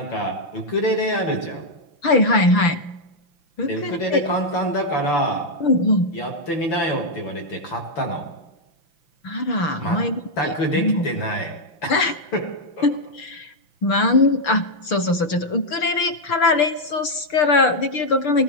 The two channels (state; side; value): late; right; 5.9 ms